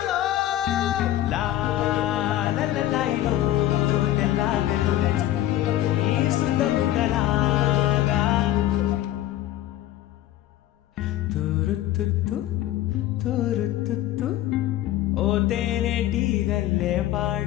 లా లల్లలాయిలో లల్లా లల్ల ఈ సుందముకలాగా తూరుతుత్తు తూరుతుత్తు ఓ తేనెటీగల్లే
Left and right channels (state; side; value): quieter; right; 13.7 dB